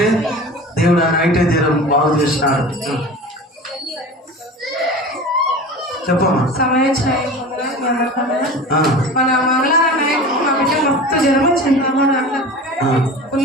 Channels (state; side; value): normal; both; correlation 0.35